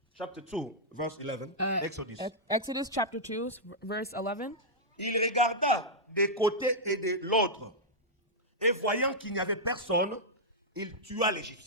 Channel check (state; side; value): normal; both; correlation -0.09